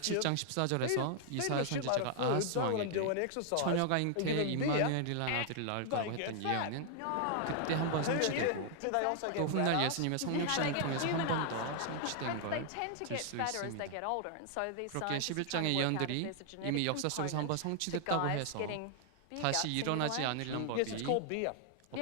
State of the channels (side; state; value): both; different; correlation 0.00